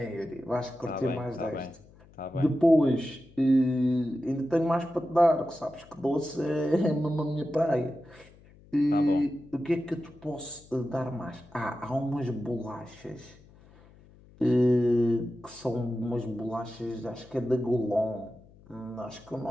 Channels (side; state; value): left; noise; hum, 25 dB below the sound